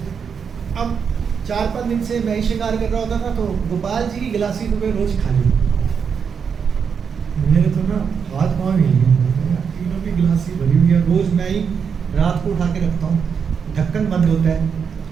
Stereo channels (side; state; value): left; quieter; 6.5 dB